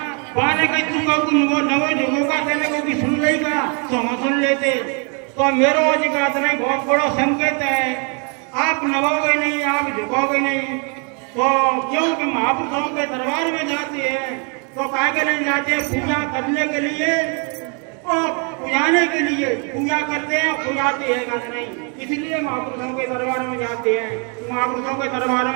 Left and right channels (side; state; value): left; quieter; 36.8 dB